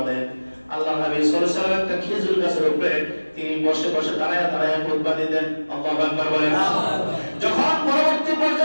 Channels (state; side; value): inverted; both; correlation -1.00